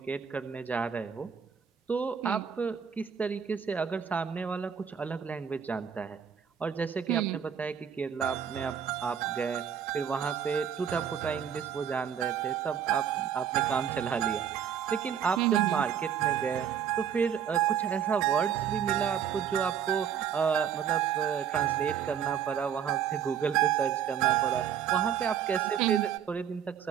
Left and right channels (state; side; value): quieter; left; 8.3 dB